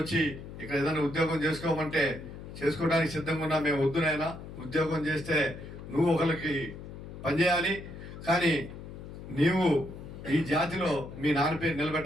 వచ్చి ఇక్కడ ఏదైనా ఉద్యోగం చేసుకోమంటే చేసుకోవడానికి సిద్ధంగా ఉన్నా. మేము వద్దునైనా ఉద్యోగం చేస్తే నువ్వు ఒకరికి పనిచేయాలి, కానీ నీవు ఈ జాతిలో మీ నాన్న పేరు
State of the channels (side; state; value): left; noise; hum, 12 dB below the sound